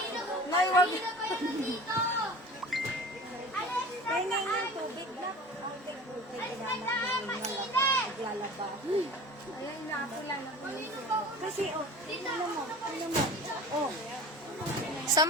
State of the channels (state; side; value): normal; both; correlation 0.39